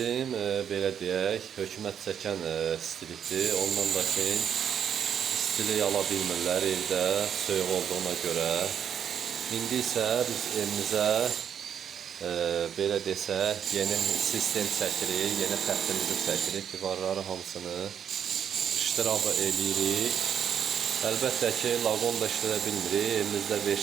belə deyək, hökumət çəkən istilikdir. Ondan da ki, istilik ala bilmirlər evdə, soyuq olduğuna görə. İndi isə biz evimizə belə desək, yeni sistem çəkirik, yeni xəttimizi çəkirik, divarları hamısını iştirabı eləyirik. Əlbəttə ki, laqon da işlədə bilmirik, elimizdə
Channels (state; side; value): quieter; left; 8.5 dB